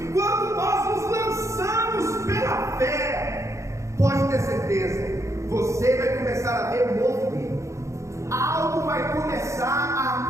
quando nós nos lançamos pela fé. Pode ter certeza, você vai começar a ver movimento, algo vai começar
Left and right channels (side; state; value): left; late; 0.14 ms